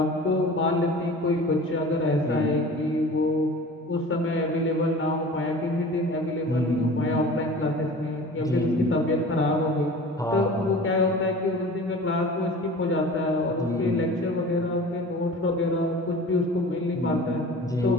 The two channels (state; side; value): normal; both; correlation 0.40